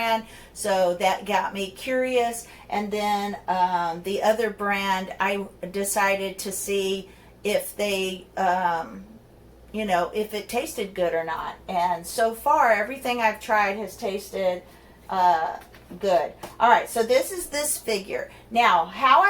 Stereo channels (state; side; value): identical; both; correlation 1.00